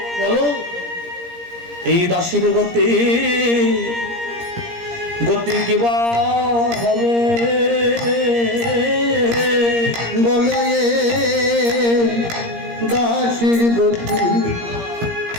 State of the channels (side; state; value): left; late; 17 ms